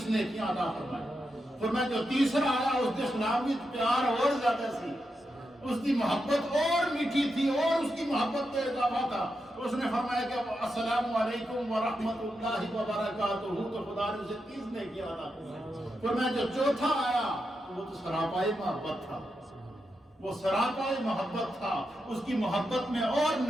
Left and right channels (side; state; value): both; normal; correlation 0.86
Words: نیکیاں عطا فرمائی۔ فرمایا جو تیسرا آیا اس کے سلام میں پیار اور زیادہ سی، اس کی محبت اور میٹھی تھی اور اس کی محبت میں اضافہ تھا، اس نے فرمایا کہ السلام علیکم ورحمۃ اللہ وبرکاتہ، تو خدا نے اسے 30 نیکیاں عطا فرمائی۔ فرمایا جو چوتھا آیا وہ تو سراپائی محبت تھا، وہ سراپائی محبت تھا، اس کی محبت میں اور